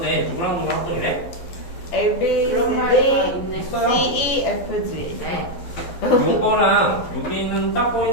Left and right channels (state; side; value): late; right; 12 ms